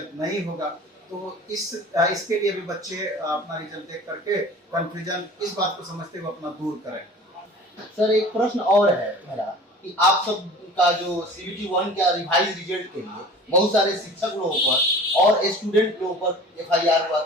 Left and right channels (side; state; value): both; normal; correlation 0.42